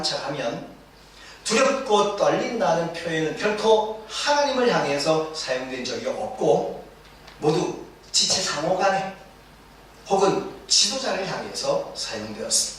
두렵고 떨린다는 표현은 결코 하나님을 향해서 사용된 적이 없고 모두 지체 상호 간에 혹은 지도자를 향해서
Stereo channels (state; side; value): identical; both; correlation 1.00